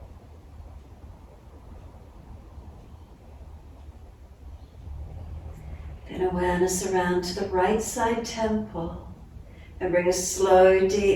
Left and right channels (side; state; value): both; identical; correlation 1.00